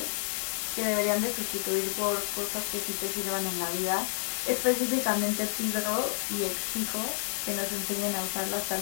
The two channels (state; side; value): silent; right; digital silence